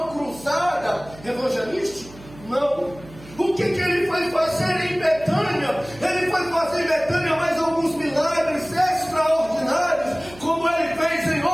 cruzada evangelística? Não. O que ele foi fazer em Betânia? Ele foi fazer em Betânia mais alguns milagres extraordinários, como ele fez em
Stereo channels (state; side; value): noise; right; hum, 20 dB below the sound